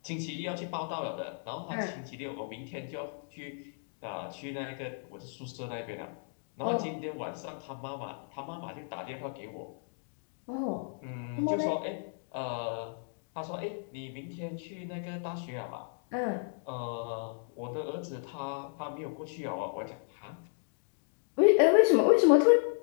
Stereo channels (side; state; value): right; silent; digital silence